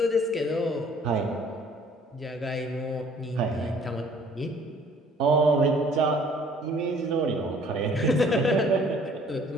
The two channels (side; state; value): both; normal; correlation 0.56